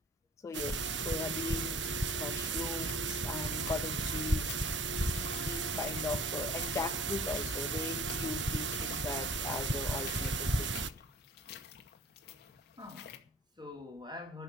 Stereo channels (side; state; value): both; normal; correlation 0.49